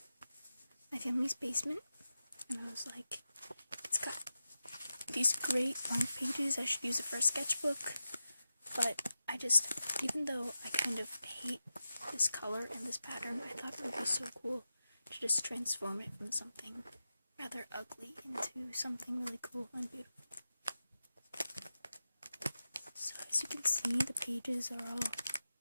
my family's basement, and I was like, it's got these great long pages, I should use it for a sketchbook, but even though I kind of hate this color and this pattern, I thought it would be so cool to just transform it from something rather ugly into something really cool and beautiful. So as you can see, the pages are all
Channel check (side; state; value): both; inverted; correlation -0.92